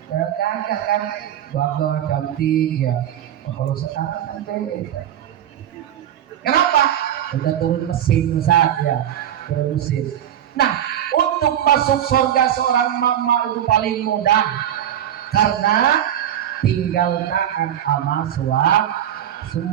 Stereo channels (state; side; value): quieter; left; 10.7 dB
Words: Gagah kan, bangga, cantik ya. Kalau sekarang kan beda. Kenapa? Udah turun mesin Ustaz ya, turun mesin. Nah, untuk masuk surga seorang mama itu paling mudah, karena tinggal taat sama